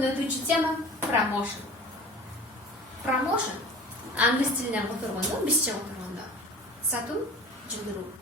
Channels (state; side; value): normal; both; correlation 0.41